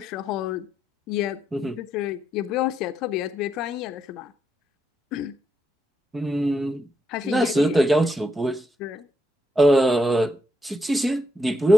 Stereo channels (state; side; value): normal; both; correlation 0.80